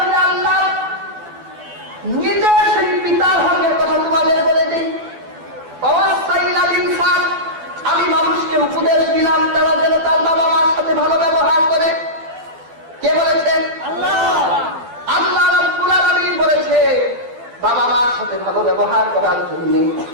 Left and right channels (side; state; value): left; late; 12 ms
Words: আল্লাহ নিজে সেই পিতার হকের কথা তোমাদের বলে দিই। আমি মানুষকে উপদেশ দিলাম তারা যেন তার বাবা মার সাথে ভালো ব্যবহার করে। কে বলেছেন? আল্লাহ। আল্লাহ রাব্বুল আলামিন বলেছে বাবা মার সাথে ভালো ব্যবহার করার জন্য।